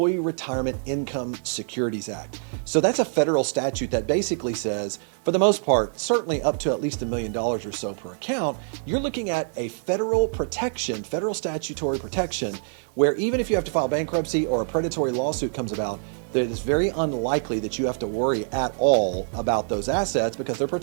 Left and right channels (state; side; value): silent; left; digital silence